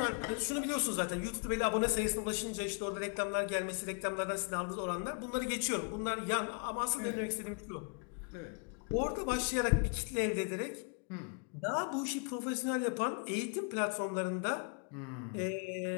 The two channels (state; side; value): quieter; right; 38.8 dB